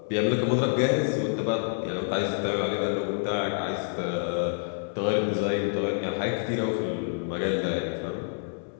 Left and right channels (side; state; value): right; silent; 60 dB below the other